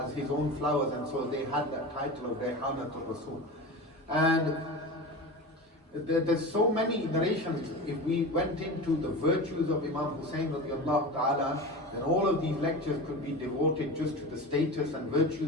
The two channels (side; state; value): both; normal; correlation 0.29